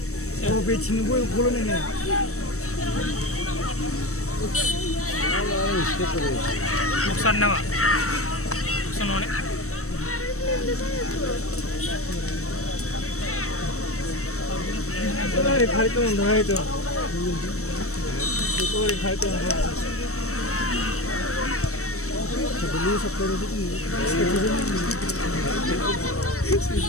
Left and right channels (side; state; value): right; late; 0.64 ms